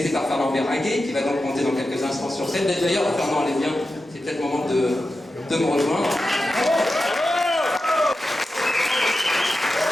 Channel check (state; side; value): normal; both; correlation 0.91